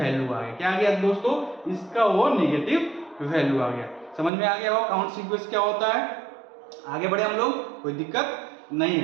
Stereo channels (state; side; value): drops out; left; at 4.3 s